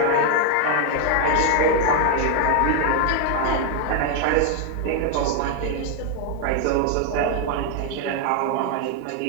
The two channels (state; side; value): different; both; correlation 0.01